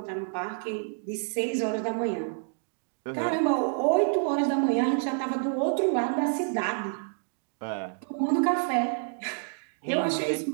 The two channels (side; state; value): left; silent; digital silence